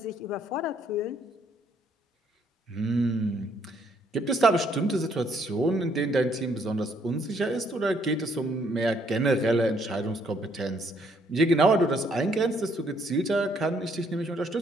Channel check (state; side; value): normal; both; correlation 0.68